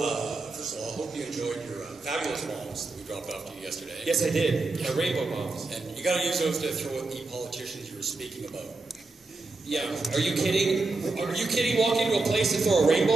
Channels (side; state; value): left; quieter; 3.4 dB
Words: first of all, I hope you enjoyed your fabulous bombs that we dropped off to you yesterday. Yes, I did. My rainbow bombs. And you gotta use those to throw at the politicians you were speaking about. Yeah, are you kidding? Are you kidding? Walk into a place and throw a